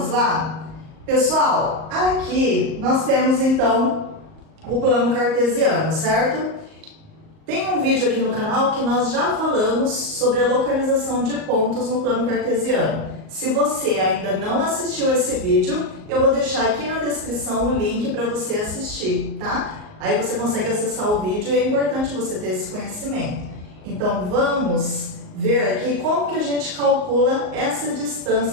lá? Pessoal, aqui nós temos então o plano cartesiano, certo? Tem um vídeo aqui no canal que nós já falamos sobre a localização de pontos no plano cartesiano. Se você ainda não assistiu esse vídeo, eu vou deixar aqui na descrição o link para você assistir, tá? Aí você consegue acessar o vídeo e é importante você ter esse conhecimento. Então vamos ver aqui como que a gente calcula essa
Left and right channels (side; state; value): left; late; 38 ms